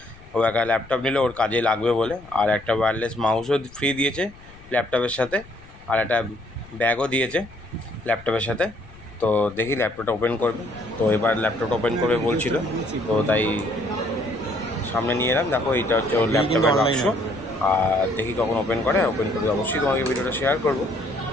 ও একটা ল্যাপটপ নিলে ওর কাজে লাগবে বলে। আর একটা ওয়্যারলেস মাউসও ফ্রি দিয়েছে ল্যাপটপের সাথে, আর একটা ব্যাগও দিয়েছে ল্যাপটপের সাথে। তো দেখি ল্যাপটপটা ওপেন করবে। তো এবার ল্যাপটপটা ওপেন করবে বলছিল, তো তাই সামনে নিয়ে এলাম। দেখো এইটা হচ্ছে ওর ল্যাপটপের বাক্স। আর দেখি কখন ওপেন করে, ওপেন করে অবশ্যই তোমাকে ভিডিওটা শেয়ার করবো।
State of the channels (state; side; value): noise; left; rumble, 22 dB below the sound